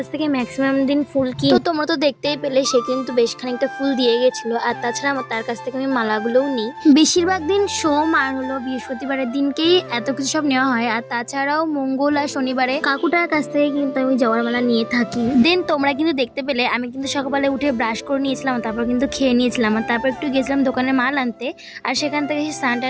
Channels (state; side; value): identical; both; correlation 1.00